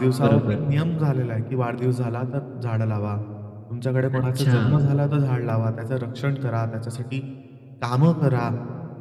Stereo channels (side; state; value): both; identical; correlation 1.00